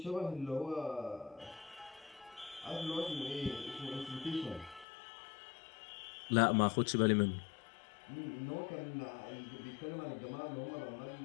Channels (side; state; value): right; drops out; at 4.9 s